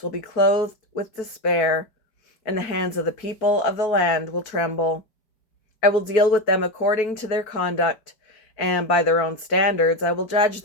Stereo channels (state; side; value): late; right; 4.6 ms